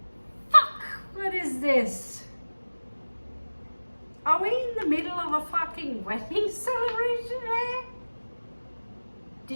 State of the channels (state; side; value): inverted; both; correlation -1.00